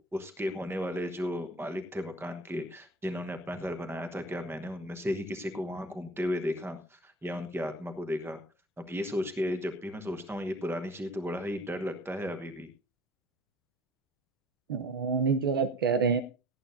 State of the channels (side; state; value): both; normal; correlation 0.47